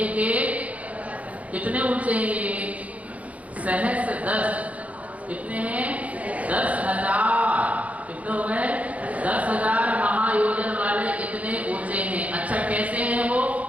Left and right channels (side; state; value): left; late; 0.068 ms